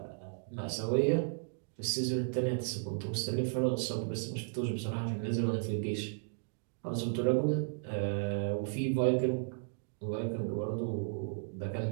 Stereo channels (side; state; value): left; silent; digital silence